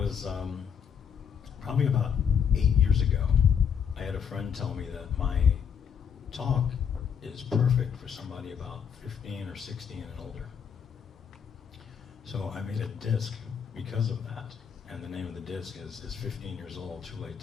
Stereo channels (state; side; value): quieter; right; 7.4 dB